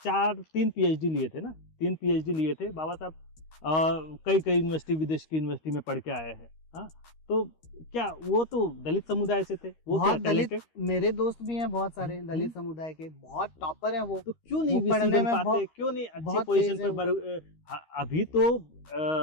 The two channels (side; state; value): right; late; 13 ms